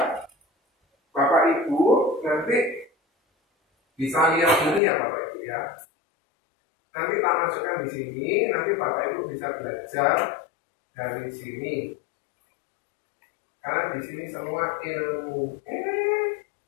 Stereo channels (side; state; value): right; drops out; at 4.8 s